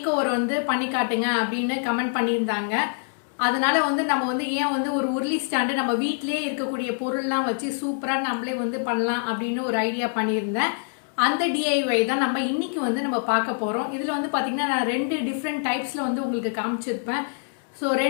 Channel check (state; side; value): silent; right; digital silence